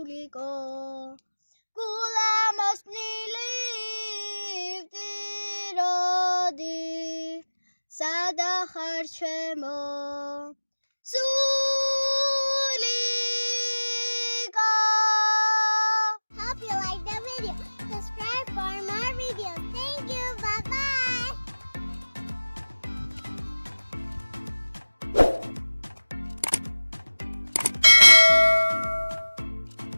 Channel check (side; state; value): both; inverted; correlation -1.00